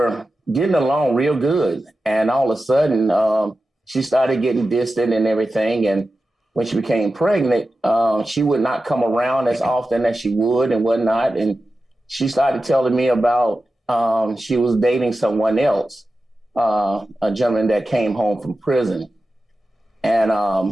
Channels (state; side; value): normal; both; correlation 0.93